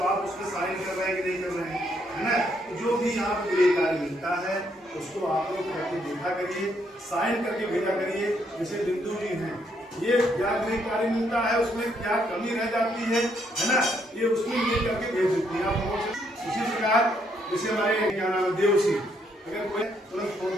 आप उसमें साइन कर रहे हैं कि नहीं कर रहे हैं, है ना? जो भी यहाँ पे गृह कार्य मिलता है उसको आप लोग करके देखा करिए, साइन करके भेजा करिए। जैसे बिंदु जी हैं, ये क्या गृह कार्य मिलता है, उसमें क्या कमी रह जाती है ना? ये उसमें ये करके भेज देती है आप लोगों से। उसी प्रकार जैसे हमारे क्या नाम है देव सिंह, अगर कोई तुरंत फोन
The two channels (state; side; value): normal; both; correlation 0.73